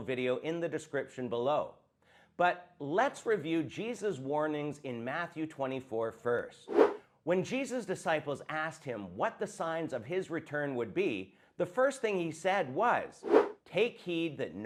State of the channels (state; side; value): identical; both; correlation 1.00